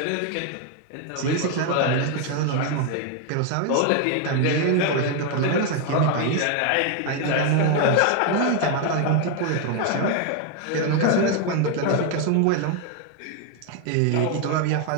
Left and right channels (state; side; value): different; both; correlation 0.01